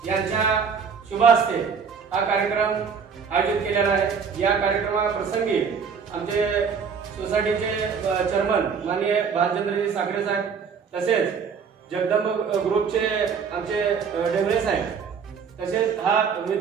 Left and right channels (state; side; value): quieter; left; 6.2 dB